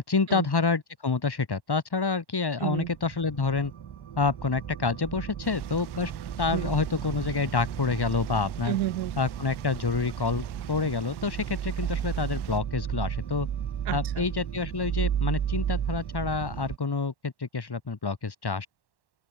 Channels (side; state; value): right; late; 1.1 ms